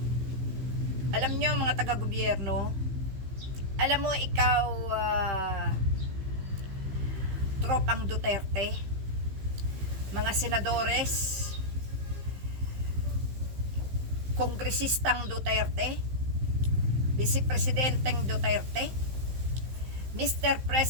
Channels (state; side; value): late; left; 15 ms